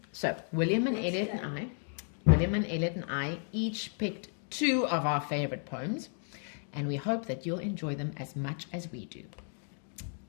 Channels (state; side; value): silent; right; 55 dB below the other